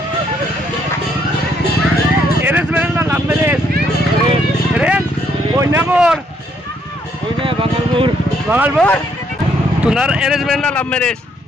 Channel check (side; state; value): both; normal; correlation 0.70